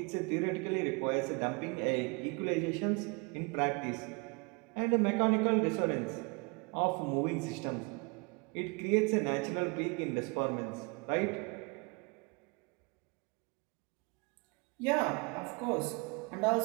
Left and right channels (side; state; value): left; quieter; 30.4 dB